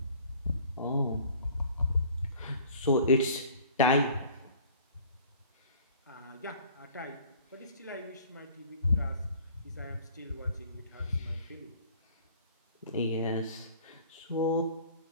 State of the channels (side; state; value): both; inverted; correlation -0.51